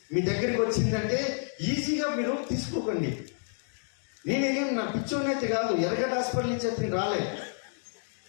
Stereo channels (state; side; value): silent; right; 58 dB below the other